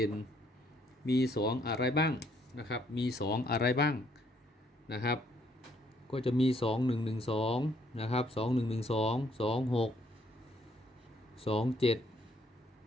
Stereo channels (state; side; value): normal; both; correlation 0.68